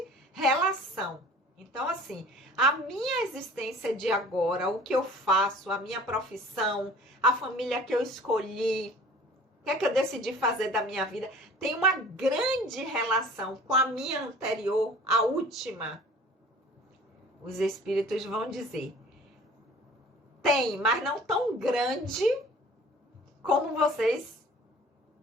relação. Então, assim, a minha existência de agora, o que eu faço, a minha profissão, a família que eu escolhi, o que é que eu decidi fazer da minha vida, tem uma grande relação com a minha anterior, a última. Os espíritos vão dizer, tem, mas não tão grande como vocês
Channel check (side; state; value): both; normal; correlation 0.47